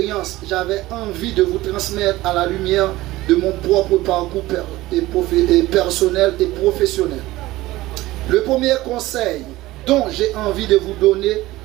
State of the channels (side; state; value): left; quieter; 17.8 dB